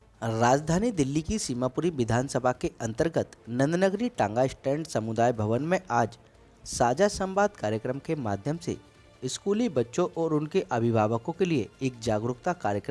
राजधानी दिल्ली की सीमापुरी विधानसभा के अंतर्गत नंदनगरी टांगा स्टैंड समुदाय भवन में आज साझा संवाद कार्यक्रम के माध्यम से स्कूली बच्चों और उनके अभिभावकों के लिए एक जागरूकता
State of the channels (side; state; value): both; identical; correlation 1.00